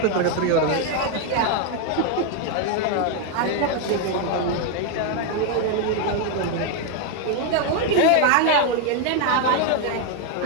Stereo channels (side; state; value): both; different; correlation 0.01